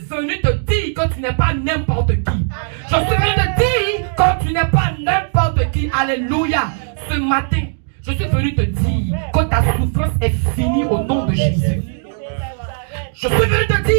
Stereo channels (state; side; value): silent; left; digital silence